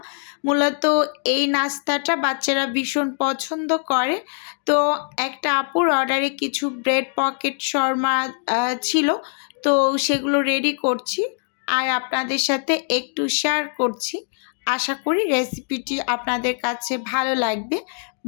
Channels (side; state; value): right; silent; 57 dB below the other